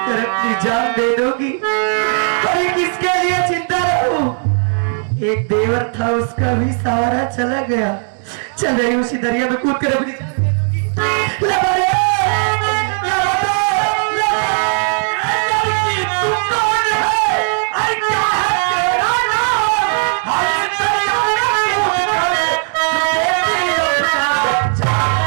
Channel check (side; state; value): left; silent; 59 dB below the other